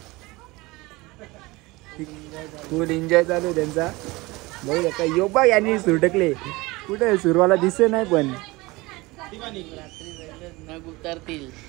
फुल एन्जॉय चालू आहे त्यांचा. बघू शकता योबा यांनी सुटकले. कुठे सुरवाला दिसे नाही पण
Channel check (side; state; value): left; quieter; 22.3 dB